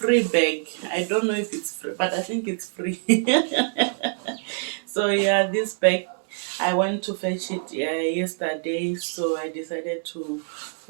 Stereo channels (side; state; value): left; silent; 62 dB below the other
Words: bag. I don't know if it's free, but I think it's free. So yeah, this bag, I went to fetch it yesterday, so I decided to